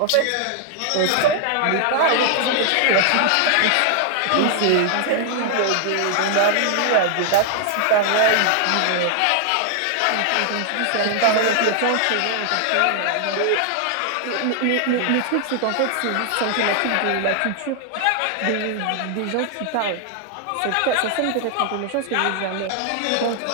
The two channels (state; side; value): different; both; correlation 0.00